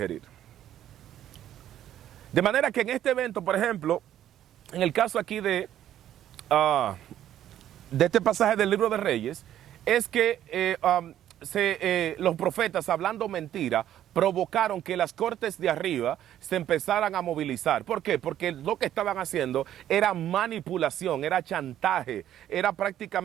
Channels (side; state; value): left; quieter; 11.5 dB